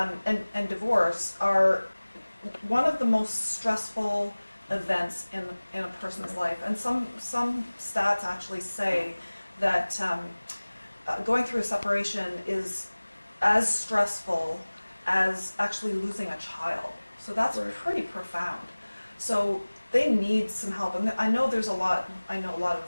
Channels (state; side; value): inverted; both; correlation -1.00